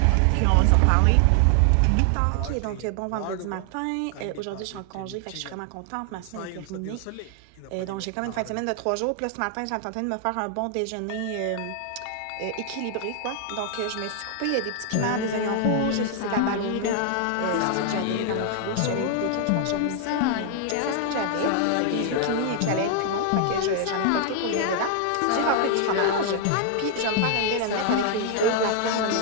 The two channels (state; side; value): different; both; correlation 0.00